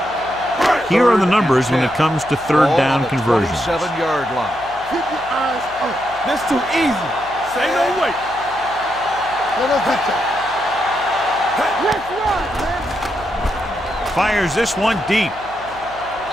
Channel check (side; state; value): right; noise; hum, 22 dB below the sound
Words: Here are the numbers when it comes to 3rd down conversions. 27-yard line. Keep your eyes up. That's too easy. Say no way. Let us hit you. Let's run, man. fires this one deep.